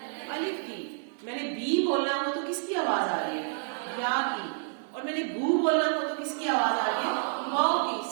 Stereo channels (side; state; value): left; silent; digital silence